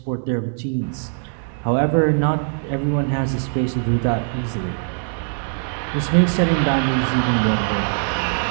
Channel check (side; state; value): left; silent; 56 dB below the other